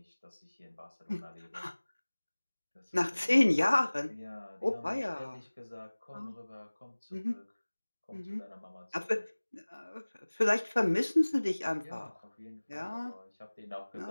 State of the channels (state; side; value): inverted; both; correlation -1.00